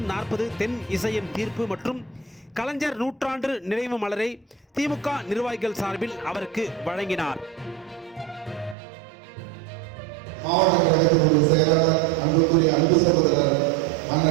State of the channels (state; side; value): drops out; left; at 8.8 s